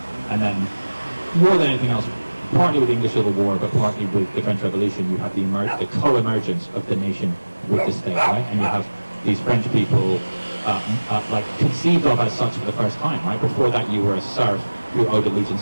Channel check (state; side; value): inverted; both; correlation -1.00